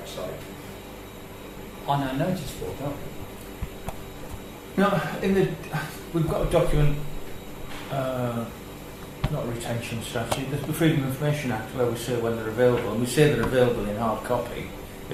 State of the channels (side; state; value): both; identical; correlation 1.00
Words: on our notice board, don't we? No, we've got a document, not a retention strategy, there's the Freedom of Information Act where we say when they're available, and we say they're available in hard copy